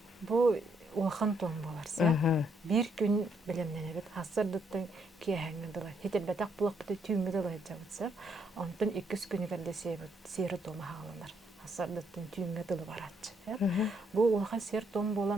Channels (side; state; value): both; normal; correlation 0.73